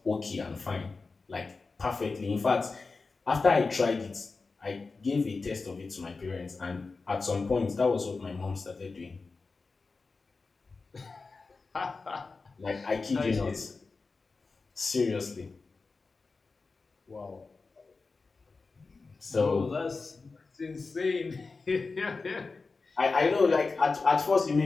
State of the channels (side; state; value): right; quieter; 4.1 dB